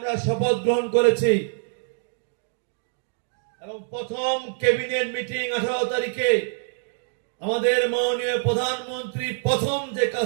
শপথ গ্রহণ করেছি এবং প্রথম ক্যাবিনেট মিটিং 18 তারিখে আমাদের মাননীয় প্রধানমন্ত্রী প্রথম যে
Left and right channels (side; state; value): left; silent; digital silence